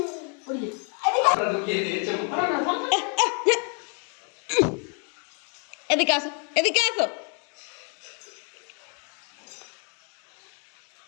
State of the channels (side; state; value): right; quieter; 38.5 dB